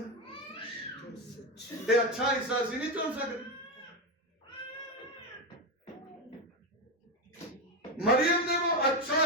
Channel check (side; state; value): both; normal; correlation 0.12